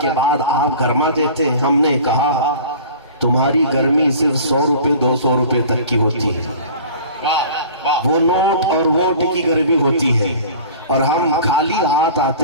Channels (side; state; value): both; inverted; correlation -0.42